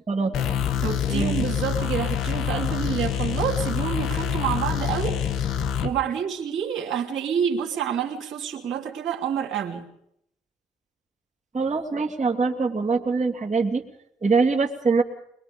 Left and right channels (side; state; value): both; normal; correlation 0.57